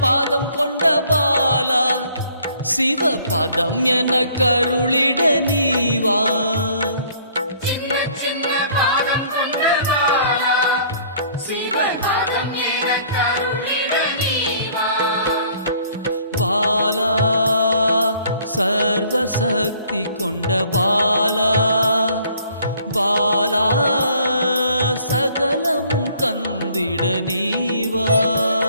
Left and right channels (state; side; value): inverted; both; correlation -0.58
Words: பாதம் கொண்ட பாலா, சிவ பதம் என கருளிட நீவா. பாலா சர்வசக்தி கொண்ட பாலா, பாலா சகலமும் தந்திட நீவா.